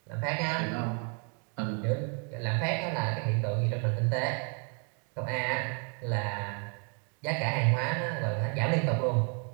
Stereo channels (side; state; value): left; quieter; 38.9 dB